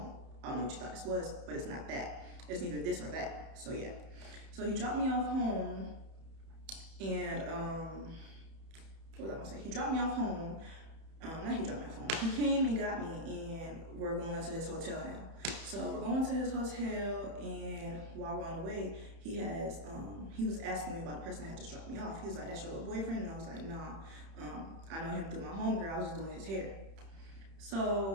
I don't know what you thought this was, but it's not that. It's neither this or that, so yeah. So he dropped me off home, and what was I gonna say? He dropped me off home. Not he dropped me off home. He came and got me, and we're going to his hotel now. So we're going to his hotel, and while we're on the way, he was asking me about the person that had just dropped me off. He was like, "That's your little boyfriend?" And I was like, "Nah, I know him through my homegirl. I was just doing his hair."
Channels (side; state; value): left; late; 31 ms